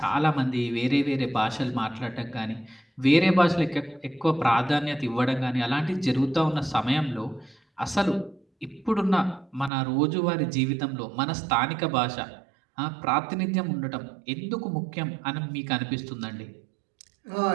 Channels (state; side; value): drops out; left; at 9.7 s